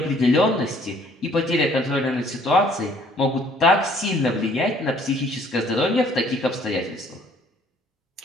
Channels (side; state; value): both; normal; correlation 0.60